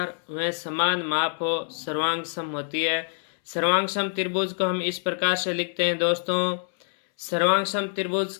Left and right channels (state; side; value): silent; right; 61 dB below the other